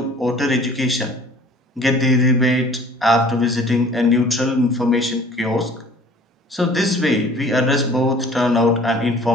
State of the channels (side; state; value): both; normal; correlation 0.49